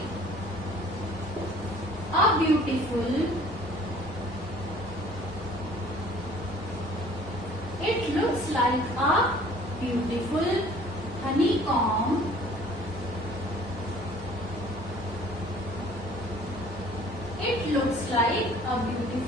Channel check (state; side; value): normal; both; correlation 0.52